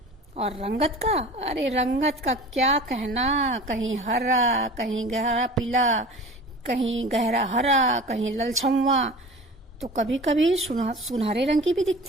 और रंगत का, अरे रंगत का क्या कहना, कहीं हरा, कहीं गहरा पीला, कहीं गहरा हरा, कहीं ललछम्वा, तो कभी कभी सुनहरे रंग की भी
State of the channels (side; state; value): both; normal; correlation 0.39